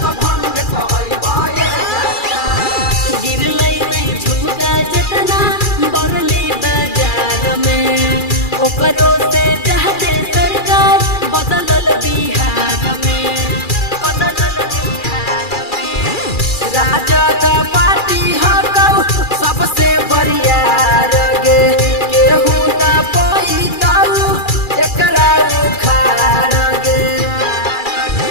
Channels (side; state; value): right; late; 2.4 ms